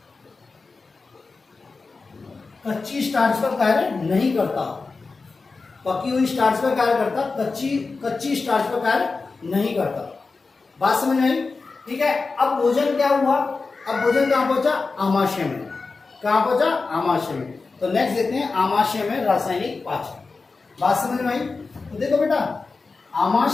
कच्ची स्टार्च पर कार्य नहीं करता। पकी हुई स्टार्च पर कार्य करता, कच्ची स्टार्च पर कार्य नहीं करता। बात समझ में आई। ठीक है, अब भोजन क्या हुआ, अब भोजन कहां पहुंचा, आमाशय में। कहां पहुंचा, आमाशय में। तो नेक्स्ट देखते हैं आमाशय में रासायनिक पाचन। बात समझ में आई। तो देखो बेटा,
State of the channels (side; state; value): right; quieter; 4.1 dB